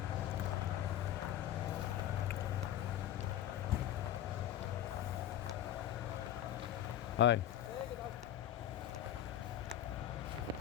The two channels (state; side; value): quieter; right; 11.3 dB